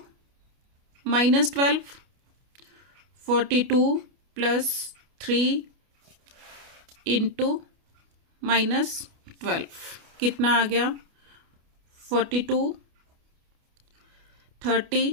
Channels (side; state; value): left; late; 29 ms